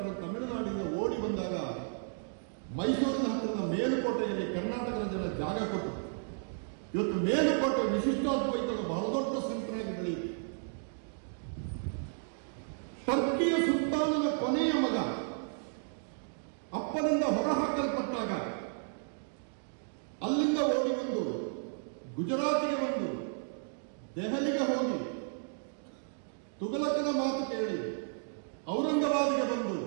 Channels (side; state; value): left; silent; digital silence